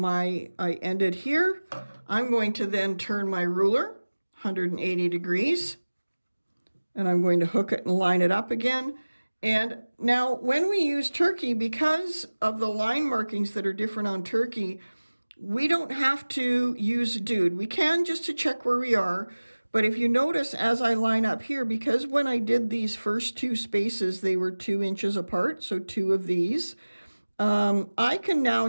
ended here. I'm going to then turn my ruler 180 degrees. And I'm going to hook it and line it up again. And now when we use turkey, because of the line markings that are different on turkey, we don't have to use dude. We can just to check where we are. But if you notice as I line up here, because when I did these first two spaces, they were 2 inches apart, so 2 of these, I can now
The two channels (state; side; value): inverted; both; correlation -1.00